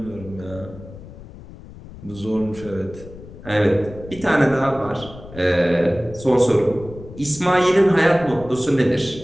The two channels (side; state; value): left; noise; rumble, 16 dB below the sound